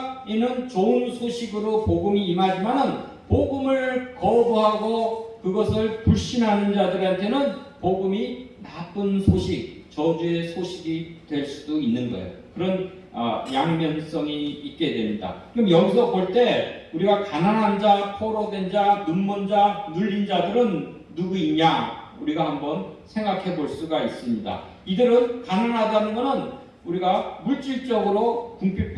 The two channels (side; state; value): both; identical; correlation 1.00